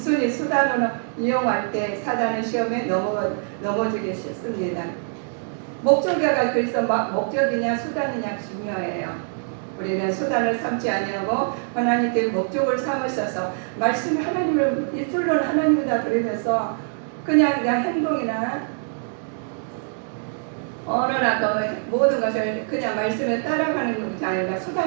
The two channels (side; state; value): left; silent; 58 dB below the other